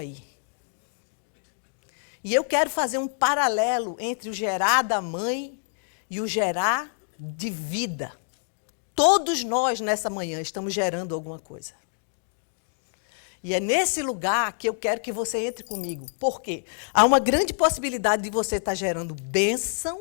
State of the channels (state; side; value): silent; right; digital silence